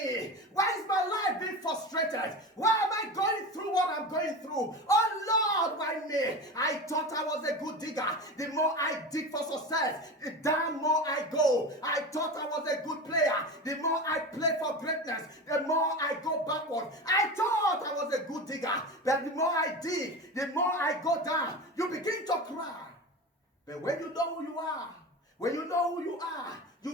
Why is my life being frustrated? Why am I going through what I'm going through? Oh Lord, why me? I thought I was a good digger. The more I dig for success, the damn more I go. I thought I was a good player. The more I play for greatness, the more I go backward. I thought I was a good digger. But the more I dig, the more I go down. You begin to cry. But when you know who you are, when you know who you are,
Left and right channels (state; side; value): normal; both; correlation 0.27